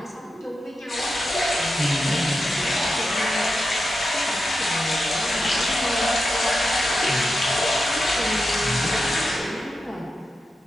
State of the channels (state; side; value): normal; both; correlation 0.89